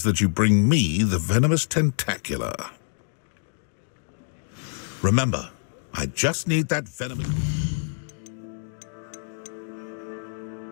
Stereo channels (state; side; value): silent; right; digital silence